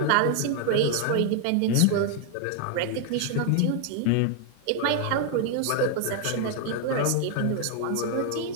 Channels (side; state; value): both; different; correlation 0.00